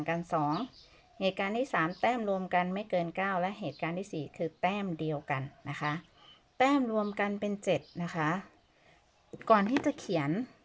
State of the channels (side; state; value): both; identical; correlation 1.00